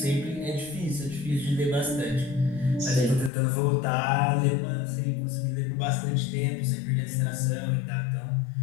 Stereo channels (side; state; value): right; drops out; at 3.3 s